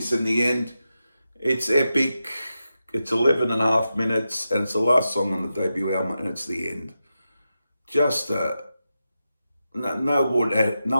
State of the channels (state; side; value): inverted; both; correlation -0.90